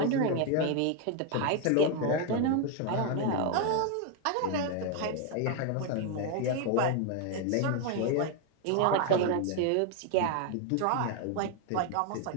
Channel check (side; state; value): both; different; correlation 0.01